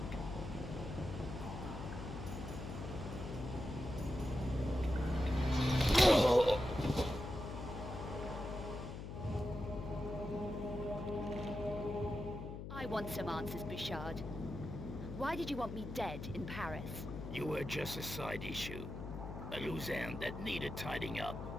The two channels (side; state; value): left; noise; hum, 7 dB below the sound